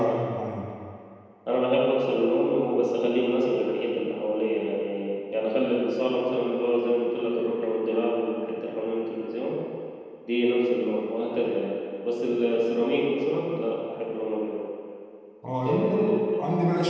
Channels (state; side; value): identical; both; correlation 1.00